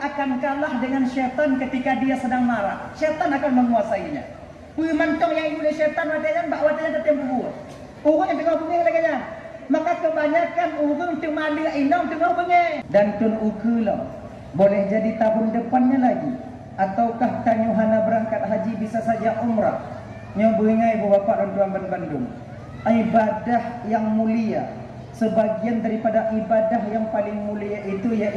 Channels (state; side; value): identical; both; correlation 1.00